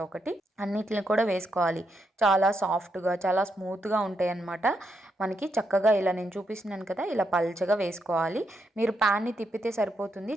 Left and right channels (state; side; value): normal; both; correlation 0.81